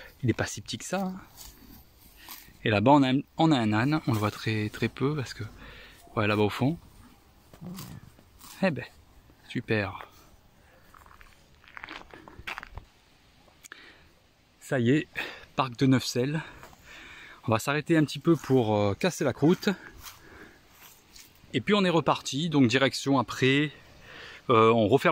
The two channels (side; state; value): both; identical; correlation 1.00